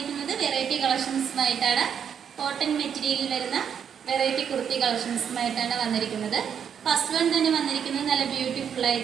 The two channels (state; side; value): quieter; left; 7.9 dB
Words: വെറൈറ്റി കളക്ഷൻസുമായിട്ടാണ്. കോട്ടൺ മെറ്റീരിയലിൽ വരുന്ന വെറൈറ്റി കുർത്തി കളക്ഷൻസുമായിട്ടാണ് വന്നിരിക്കുന്നത്. ഫസ്റ്റ് വൺ തന്നെ വന്നിരിക്കുന്നത് നല്ല ബ്യൂട്ടിഫുൾ